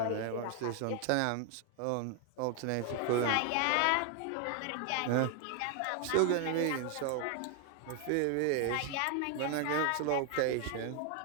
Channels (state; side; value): different; both; correlation 0.00